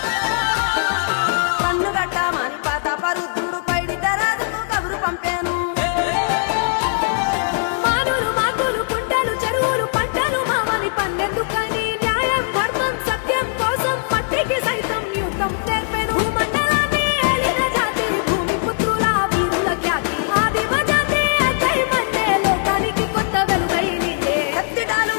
కన్ను గట్టమని పాతాపరుద్రుడు పైడిత రాజుకు కబురు పంపేను మానులు మాకులు కుంటలు చెరువులు పంటలు మావని పన్నెందుకని న్యాయం ధర్మం సత్యం కోసం మట్టికి సైతం యుద్ధం నేర్పెను భూమండలాన్ని ఏలిన జాతి భూమి పుత్రుల వీరుల ఖ్యాతి ఆదిమ జాతి అక్కై మండే లోకానికి కొత్త వెలుగై నిండే కత్తిడాలు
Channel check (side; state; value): right; silent; 64 dB below the other